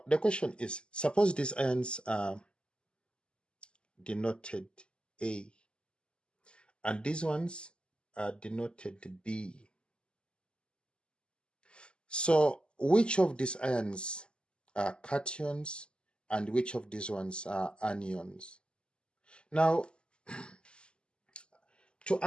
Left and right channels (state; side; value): late; right; 0.050 ms